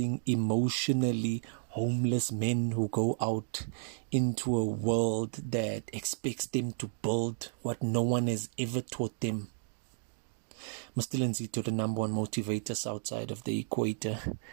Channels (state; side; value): silent; left; digital silence